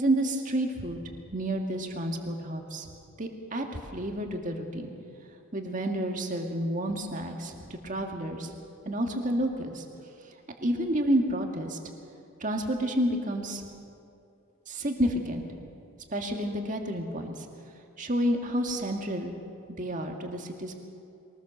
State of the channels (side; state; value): both; normal; correlation 0.61